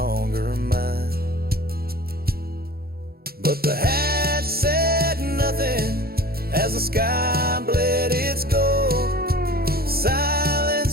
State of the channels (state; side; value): late; left; 0.44 ms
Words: mine. But the hat said nothing as the sky bled its gold.